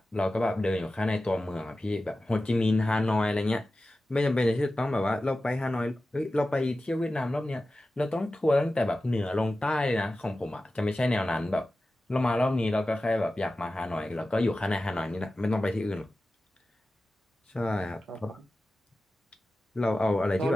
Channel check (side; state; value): both; normal; correlation 0.95